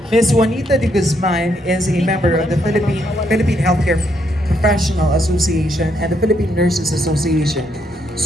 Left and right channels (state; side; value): normal; both; correlation 0.75